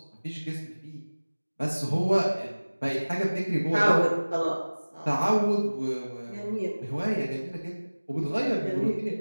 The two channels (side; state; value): both; inverted; correlation -1.00